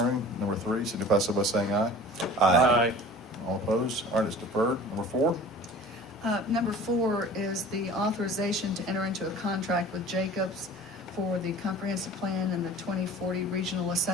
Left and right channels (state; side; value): normal; both; correlation 0.43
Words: number 3, signify so by saying aye. Aye. All opposed? All right, it's deferred. Number 4? Number 4 is the authorization to enter into a contract with Jacobs for the comprehensive plan and the 2040 regional